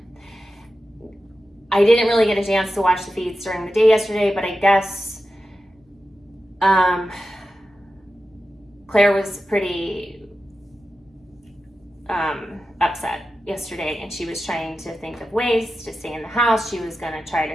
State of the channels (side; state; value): both; normal; correlation 0.91